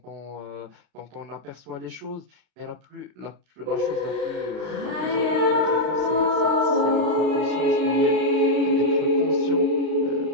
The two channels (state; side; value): late; left; 34 ms